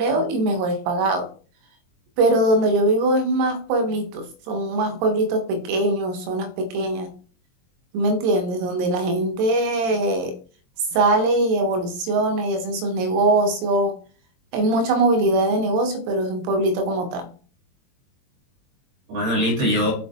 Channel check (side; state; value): left; late; 22 ms